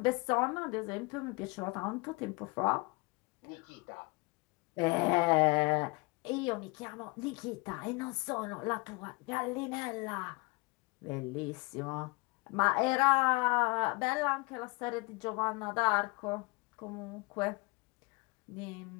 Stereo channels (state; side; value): quieter; right; 26.8 dB